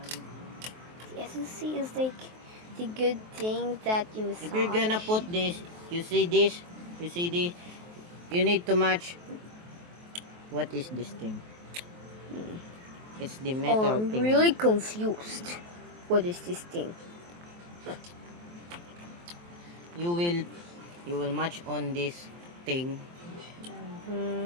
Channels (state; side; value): late; left; 23 ms